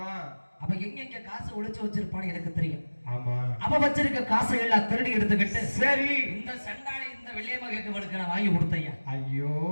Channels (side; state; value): both; inverted; correlation -1.00